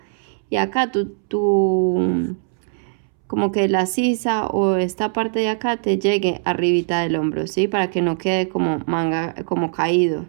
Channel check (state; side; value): silent; left; 65 dB below the other